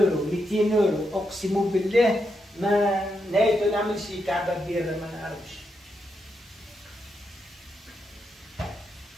200 يورو، أقسم بالله ما نهايته نعمل شي كعبة كبيرة ما نعرفش.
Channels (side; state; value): both; normal; correlation 0.83